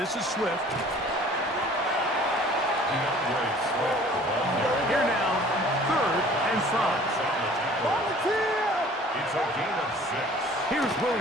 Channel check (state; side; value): normal; both; correlation 0.50